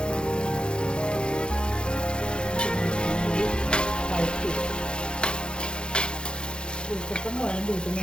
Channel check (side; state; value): right; late; 0.051 ms